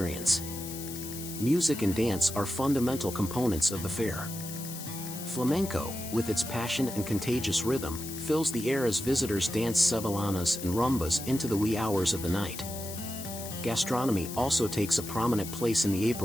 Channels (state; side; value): noise; left; hiss, 10 dB below the sound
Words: Music and dance are fundamental components of the fair. Flamenco, with its passion and contagious rhythm, fills the air as visitors dance sevillanas and rumbas into the wee hours of the night. Gastronomy also takes a prominent place in the